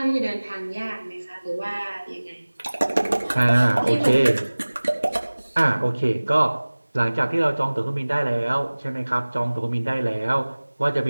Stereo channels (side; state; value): both; inverted; correlation -1.00